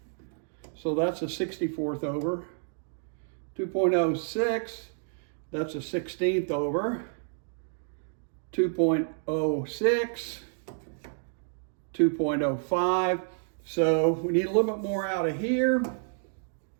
So that's a 64th over. 2.06, that's a 16th over. 2.06, 2.05. So we need a little bit more out of here.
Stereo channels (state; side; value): silent; left; digital silence